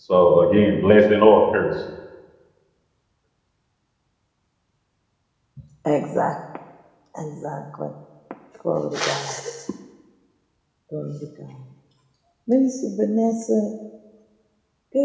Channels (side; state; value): both; identical; correlation 1.00